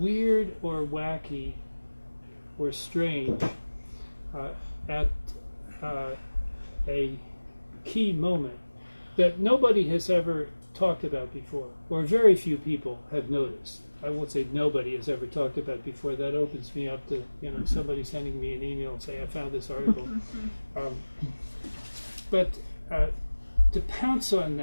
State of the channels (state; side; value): inverted; both; correlation -1.00